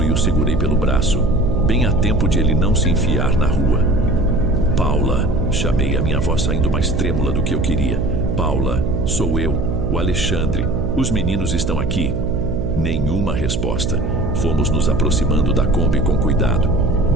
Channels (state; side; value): noise; right; hum, 2 dB below the sound